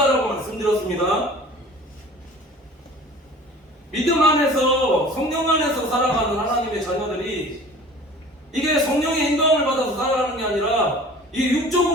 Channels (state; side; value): normal; both; correlation 0.44